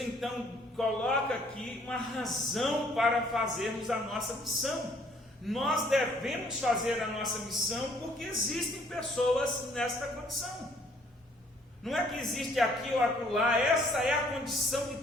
então coloca aqui uma razão para fazermos a nossa missão. Nós devemos fazer a nossa missão porque existem pessoas nesta condição. Não é que existe aqui ou acolá, essa é a condição de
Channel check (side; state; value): both; normal; correlation 0.62